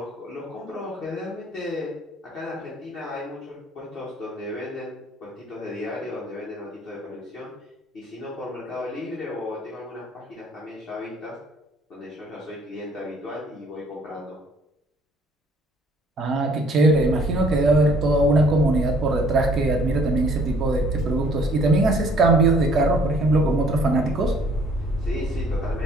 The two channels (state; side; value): normal; both; correlation 0.59